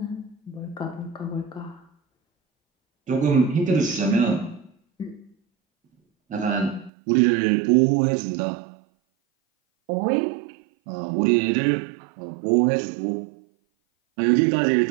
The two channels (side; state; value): left; drops out; at 6.9 s